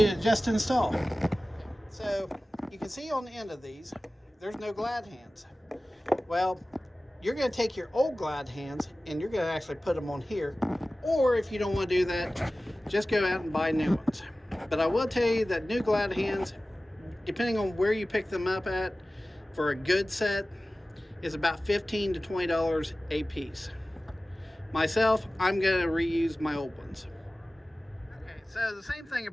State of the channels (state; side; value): normal; both; correlation 0.97